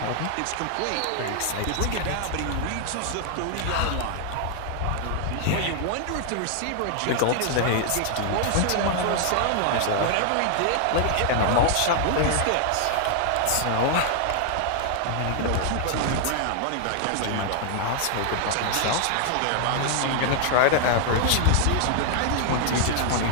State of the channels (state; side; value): different; both; correlation 0.00